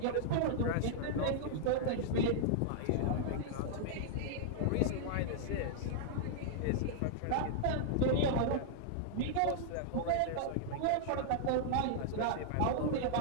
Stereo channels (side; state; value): both; different; correlation -0.01